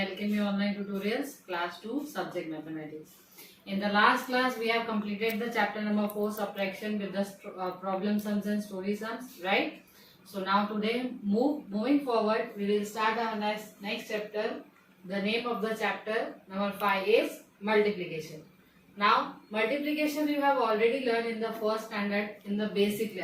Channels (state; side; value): identical; both; correlation 1.00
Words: Online Tutorials Class 2 Subject Mathematics. In the last class we have completed the chapter number 4 subtraction with the problem sums and story sums, right? So now today moving forward we will start our next chapter. The name of the chapter number 5 is multiplication. Now multiplication you have already learned in the first standard in the basic